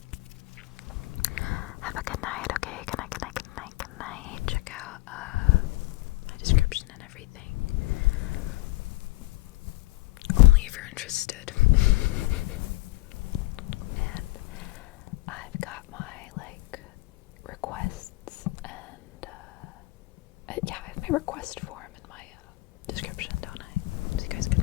Have a good night, okay? Good night. Check out my description and everything. Only if you're interested. And I've got my like requests and yeah, I have my request form in my description, don't I? So you guys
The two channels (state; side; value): quieter; right; 21.0 dB